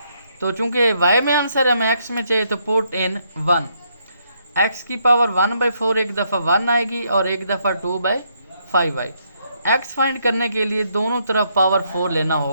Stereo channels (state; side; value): inverted; both; correlation -0.74